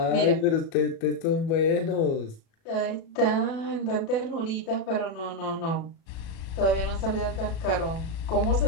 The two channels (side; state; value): right; late; 37 ms